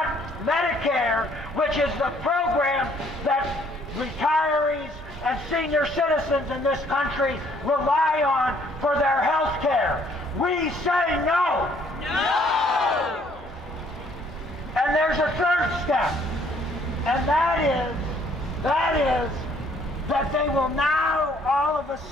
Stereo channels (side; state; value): both; normal; correlation 0.63